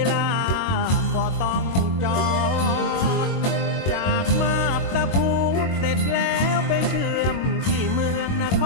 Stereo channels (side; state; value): right; late; 22 ms